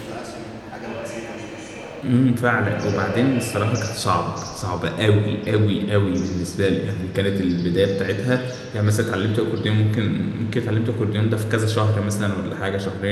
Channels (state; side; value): identical; both; correlation 1.00